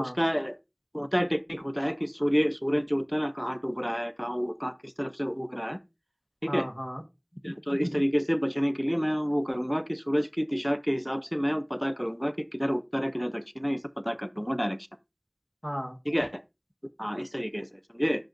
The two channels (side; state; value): both; identical; correlation 1.00